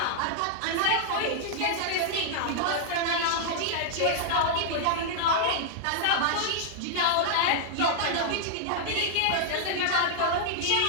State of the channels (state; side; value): different; both; correlation -0.01